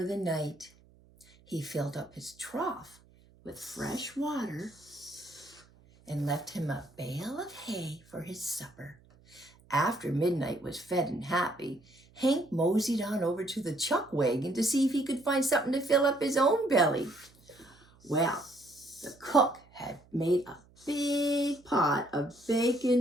the night. He filled up his trough with fresh water and left him a bale of hay for his supper. After Midnight was fed and happy, Hank moseyed on over to the chuck wagon to see if he could find something to fill up his own belly. Well, the cook had made a big pot of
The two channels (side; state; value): right; noise; hum, 28 dB below the sound